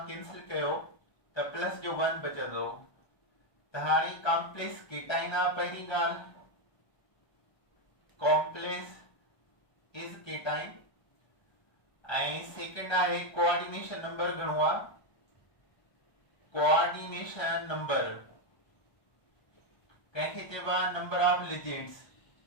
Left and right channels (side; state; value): right; late; 1.3 ms